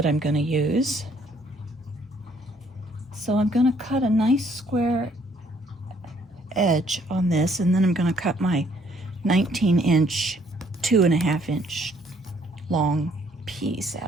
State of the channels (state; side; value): normal; both; correlation 0.65